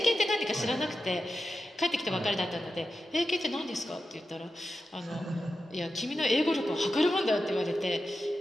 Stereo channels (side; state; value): both; normal; correlation 0.91